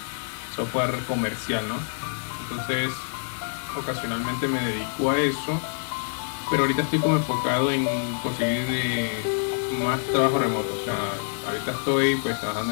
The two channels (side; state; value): right; silent; digital silence